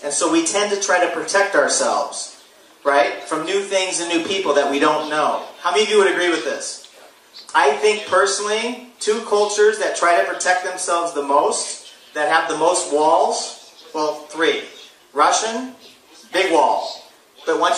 and so we tend to try to protect ourselves, right, from new things and new people that we don't know. How many of you would agree with this? I think personally two cultures that try to protect themselves the most, that have the most walls? Well, three. Russian, big wall. But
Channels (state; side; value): identical; both; correlation 1.00